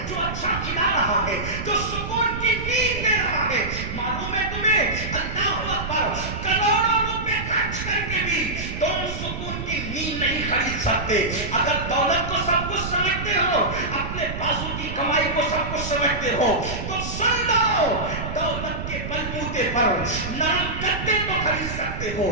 جو اچھا کھلا رہا ہے, جو سکون کی نیند دے رہا ہے, معلوم ہے تمہیں, اللہ اکبر, کروڑوں روپے خرچ کر کے بھی تم سکون کی نیند نہیں خرید سکتے. اگر دولت کو سب کچھ سمجھتے ہو, اپنے بازو کی کمائی کو سب کچھ سمجھتے ہو, تو سن لو, دولت کے بلبوتے پر نرم گدے تو خرید سکتے ہو,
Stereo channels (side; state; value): right; noise; rumble, 6 dB below the sound